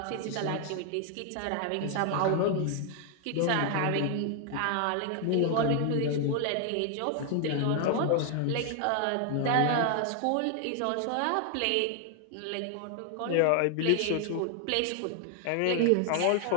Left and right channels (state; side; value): different; both; correlation 0.00